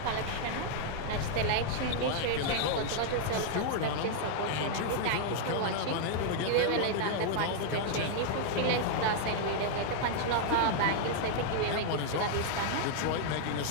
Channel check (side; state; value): both; different; correlation -0.01